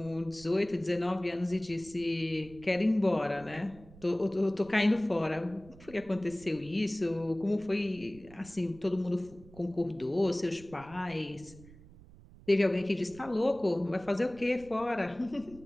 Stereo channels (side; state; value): right; noise; rumble, 21 dB below the sound